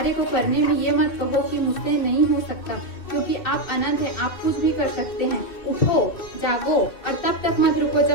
को करने में ये मत कहो कि मुझसे नहीं हो सकता, क्योंकि आप अनंत हैं, आप कुछ भी कर सकते हैं। उठो, जागो और तब तक मत रुको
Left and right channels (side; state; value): right; late; 2.6 ms